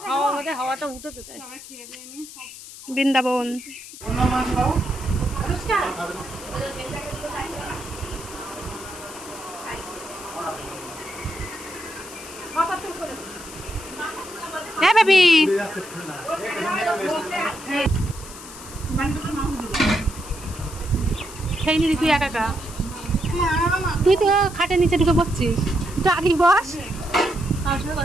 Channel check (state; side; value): noise; left; hiss, 15 dB below the sound